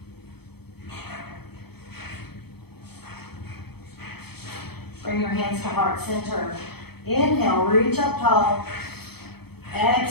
Bring your hands to heart center. Inhale, reach up tall.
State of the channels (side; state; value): right; late; 0.97 ms